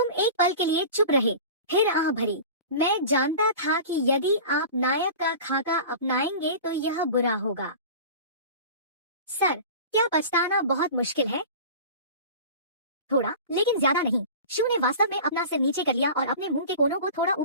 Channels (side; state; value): both; inverted; correlation -0.36